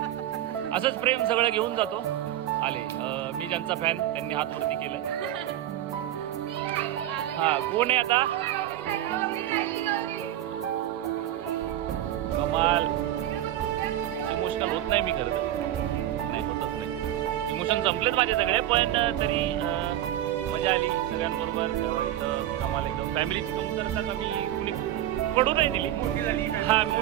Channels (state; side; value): quieter; left; 12.7 dB